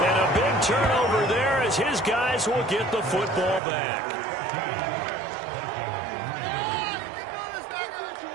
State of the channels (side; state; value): left; drops out; at 3.6 s